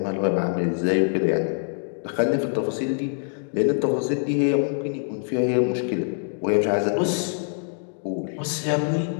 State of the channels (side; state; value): right; silent; digital silence